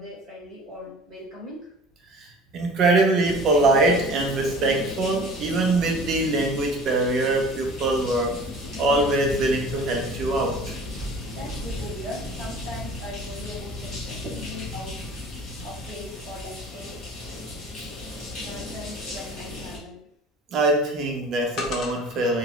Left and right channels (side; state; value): both; normal; correlation 0.44